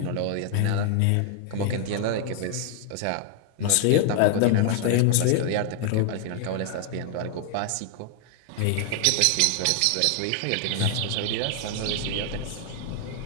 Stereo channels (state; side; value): different; both; correlation 0.00